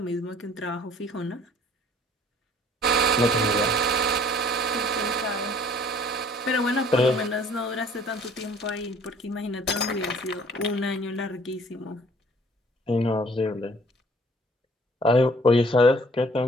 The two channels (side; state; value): both; normal; correlation 0.55